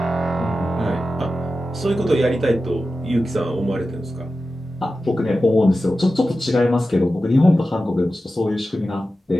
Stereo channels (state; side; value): normal; both; correlation 0.93